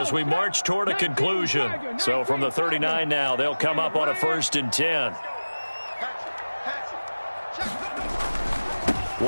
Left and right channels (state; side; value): inverted; both; correlation -1.00